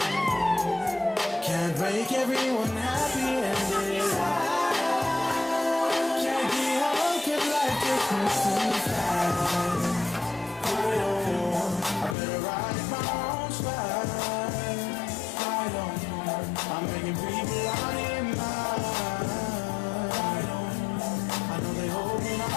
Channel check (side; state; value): right; drops out; at 12.2 s